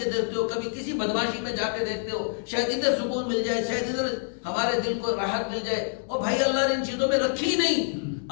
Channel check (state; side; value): silent; right; digital silence